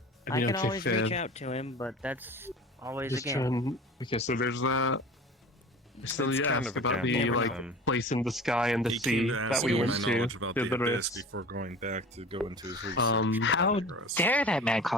I I mean, can okay, always fair. reach out to him, but that's always Just again. trying. Okay, so there's that. Still, It's you kind asked of a about gamble the with like them. place in the sky and the He sea came to that ask we me went my to. knowledge about the The abyss rest. before going back to go into his research. How progress. dare that man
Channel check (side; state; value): both; normal; correlation 0.39